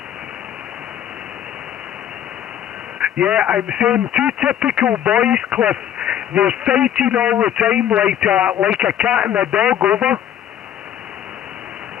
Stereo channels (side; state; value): right; quieter; 10.3 dB